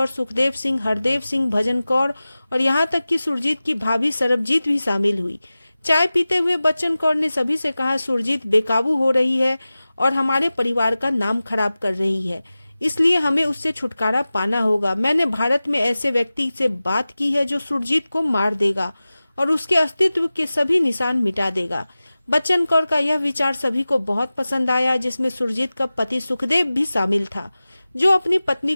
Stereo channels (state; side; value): inverted; both; correlation -0.97